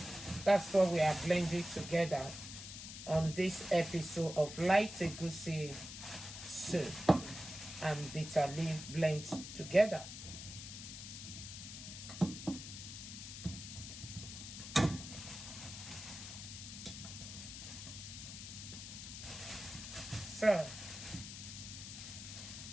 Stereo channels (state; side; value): noise; left; hiss, 10 dB below the sound